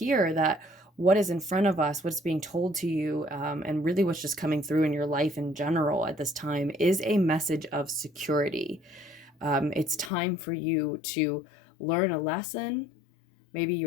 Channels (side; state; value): right; drops out; at 10.1 s